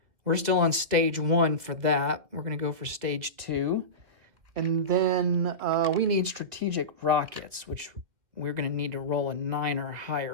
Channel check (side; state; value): left; late; 2.3 ms